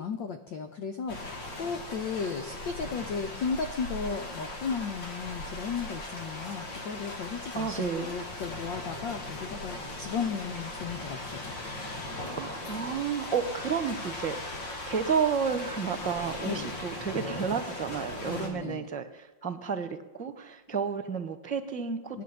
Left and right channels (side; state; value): right; late; 5.6 ms